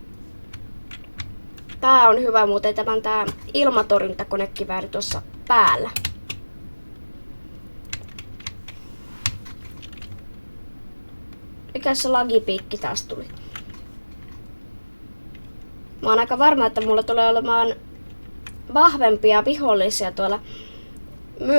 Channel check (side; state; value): both; inverted; correlation -1.00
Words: Tää on hyvä muuten tää ilmatorjuntakonekivääri tuossa päällä. Mikä se lagipiikki taas tuli? Mä oon aika varma, että mulla tulee olemaan vahvempia vihollisia tuolla